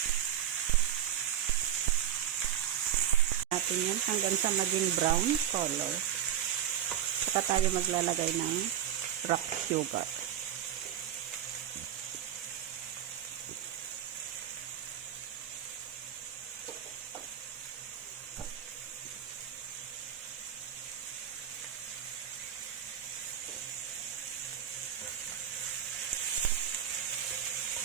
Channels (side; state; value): left; quieter; 10.4 dB